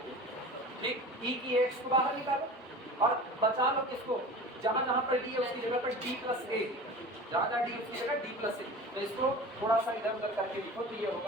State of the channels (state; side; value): normal; both; correlation 0.37